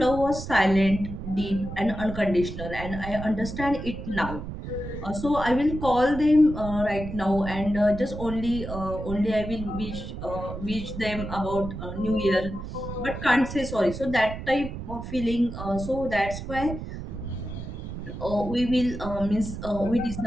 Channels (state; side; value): noise; right; rumble, 8 dB below the sound